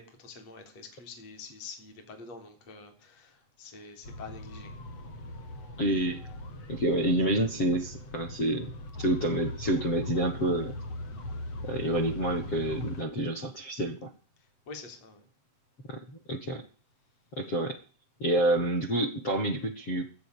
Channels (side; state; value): right; late; 7.5 ms